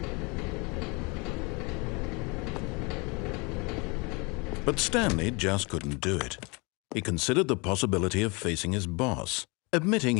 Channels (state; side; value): quieter; right; 28.8 dB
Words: But Stanley just couldn't do it. He considered the possibility of facing his boss. Admitting